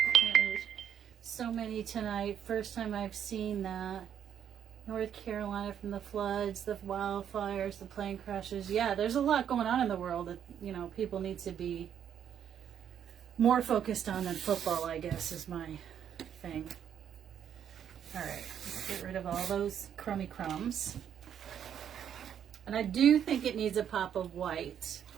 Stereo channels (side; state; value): left; quieter; 9.0 dB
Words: There's so many tonight. First time I've seen that. North Carolina from the floods, the wildfires, the plane crashes. Yeah, there's a lot going on in the world that, you know, people need to be more focused on than football, I guess, is my thing. All right, let's get rid of all those crummy crumbs. And I do think it needs a pop of white.